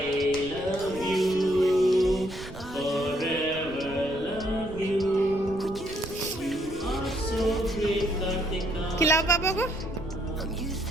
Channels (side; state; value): right; noise; rumble, 14 dB below the sound